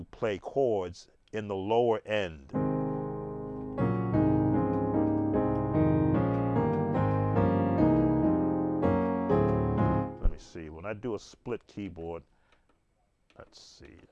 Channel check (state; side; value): identical; both; correlation 1.00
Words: play chords in the lower end. See, when I do a split keyboard, let's see, it